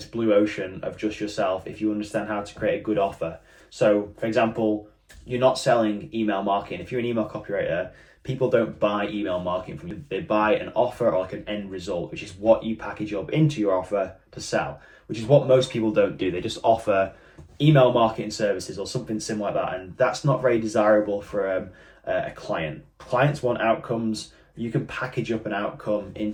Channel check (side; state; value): both; identical; correlation 1.00